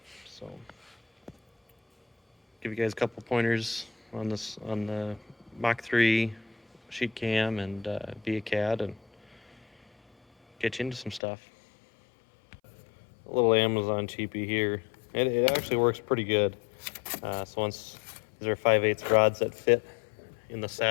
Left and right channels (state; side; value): drops out; right; at 11.2 s